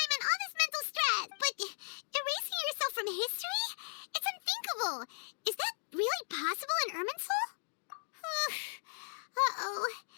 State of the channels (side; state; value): right; silent; digital silence